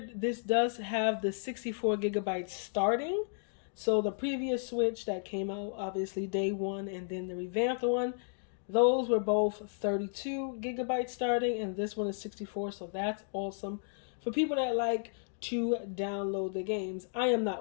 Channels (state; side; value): silent; right; digital silence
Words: this does have the 64 gigabytes starting. So the previous switch that came out, obviously day one, and then the revamped one, those were both 32 gigabytes starting, and this one is 64. So that's awesome for people that like to download the games. I am